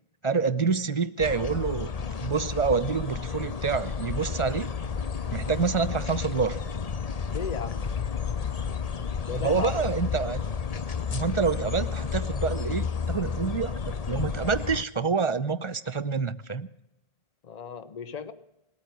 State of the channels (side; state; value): right; late; 1.4 ms